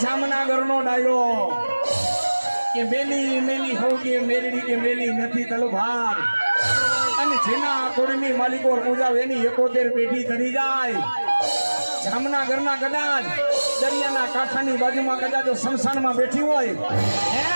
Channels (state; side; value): inverted; both; correlation -1.00